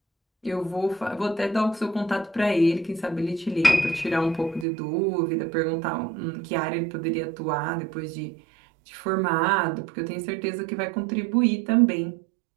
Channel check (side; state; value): left; drops out; at 4.7 s